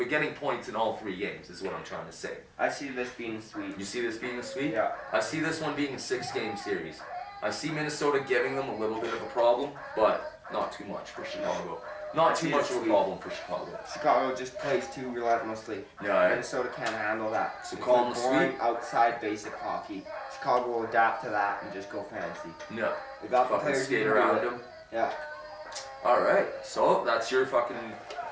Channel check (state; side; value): identical; both; correlation 1.00